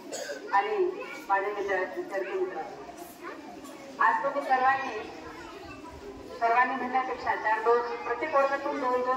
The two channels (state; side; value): identical; both; correlation 1.00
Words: आणि माझे विद्यार्थी मित्र, आज तुम्ही सर्वांनी म्हणण्यापेक्षा प्रत्येक वर्गातून